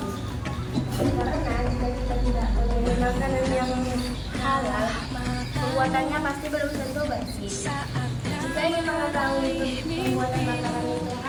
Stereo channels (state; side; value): identical; both; correlation 1.00